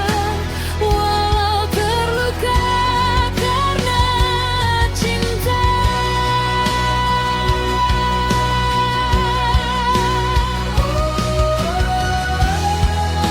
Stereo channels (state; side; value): identical; both; correlation 1.00